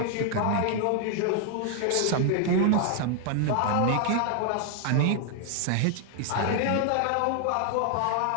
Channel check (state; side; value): different; both; correlation 0.00